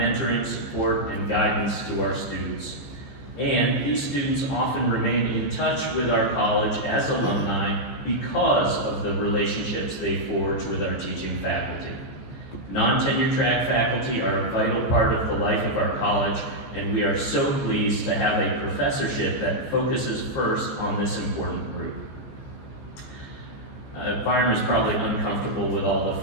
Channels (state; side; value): late; right; 15 ms